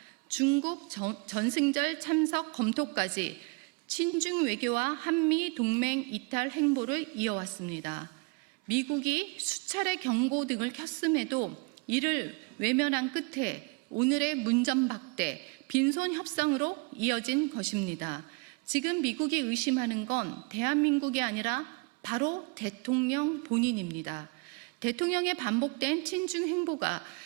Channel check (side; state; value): left; quieter; 30.7 dB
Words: 중국 전승절 참석 검토까지 친중 외교와 한미 동맹 이탈 행보를 이어왔습니다. 미국이 수차례 경고 등을 켰음에도 이를 외면한 끝에 오늘의 문전박대, 빈손 협상으로 이어진 것입니다. 지금 미국이 의심하는 건 대한민국이 아니라 바로 대통령 본인입니다. 대통령의 반복된 친중 행보가